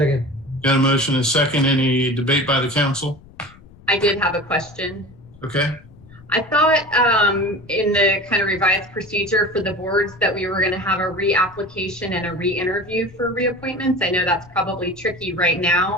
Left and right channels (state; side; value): noise; left; rumble, 23 dB below the sound